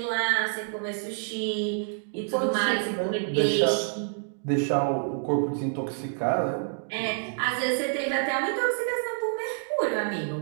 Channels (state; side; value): silent; left; digital silence